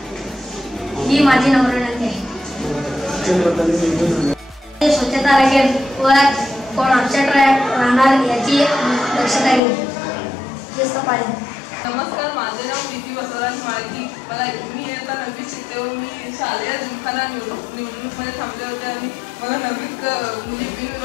ही माझी नम्र विनंती आहे। स्वच्छता राखेल व कोण अपसेट राहणार याची दक्षता घेईल। शिस्त पाळेल। नमस्कार, माझे नाव प्रीती बसवराज माळकी। मी इयत्ता 9वीत शिकते व मी शालेय जिमखाना निवडणूकमध्ये थांबले होते आणि मला 9वीत मुली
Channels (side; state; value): right; drops out; at 9.6 s